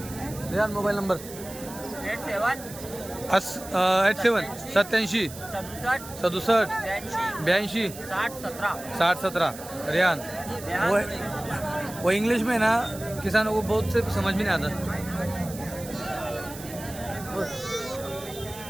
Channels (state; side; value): noise; right; hiss, 14 dB below the sound